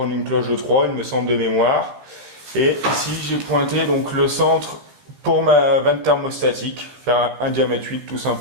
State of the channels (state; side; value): late; left; 16 ms